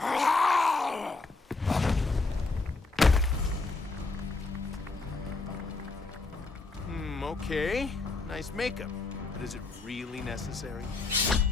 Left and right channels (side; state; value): right; quieter; 3.7 dB